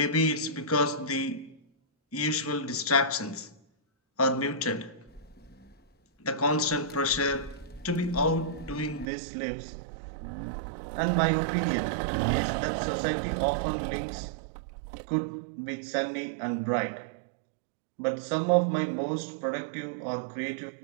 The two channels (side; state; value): left; drops out; at 9.1 s